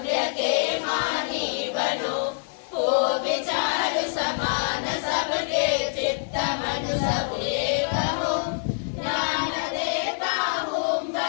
के मानी बनो. हो विचार समान सबके चित्त मन सब एक हो. ज्ञान देता हूँ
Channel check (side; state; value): right; silent; 61 dB below the other